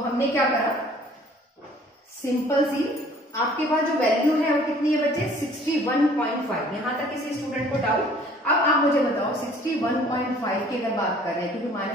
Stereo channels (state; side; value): normal; both; correlation 0.54